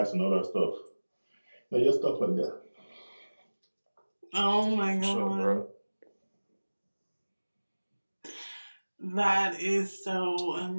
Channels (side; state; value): both; inverted; correlation -1.00